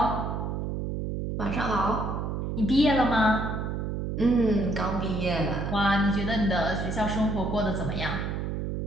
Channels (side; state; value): right; noise; hum, 3 dB below the sound